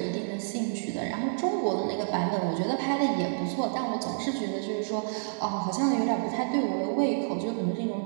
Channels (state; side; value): silent; left; digital silence